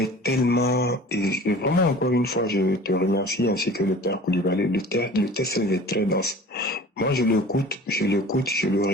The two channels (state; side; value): normal; both; correlation 0.43